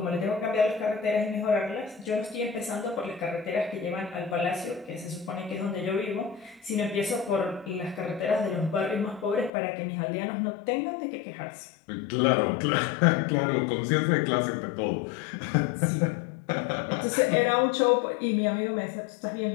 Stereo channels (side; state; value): right; drops out; at 9.5 s